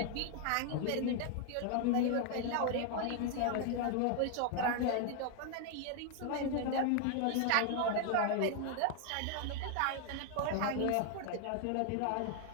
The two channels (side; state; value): both; different; correlation 0.00